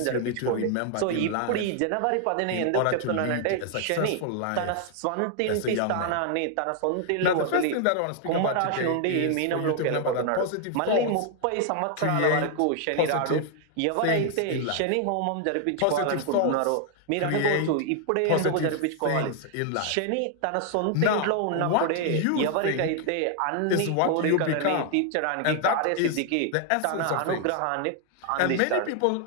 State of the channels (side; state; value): both; different; correlation 0.00